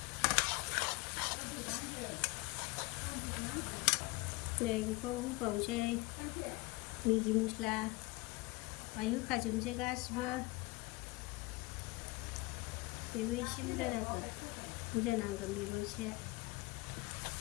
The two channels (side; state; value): right; quieter; 23.1 dB